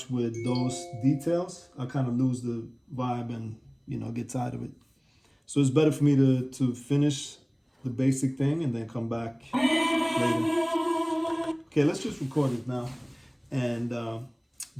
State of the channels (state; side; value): identical; both; correlation 1.00